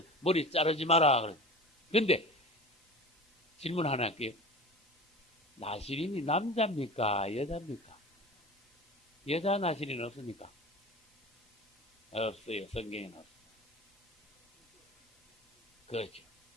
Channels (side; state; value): both; normal; correlation 0.36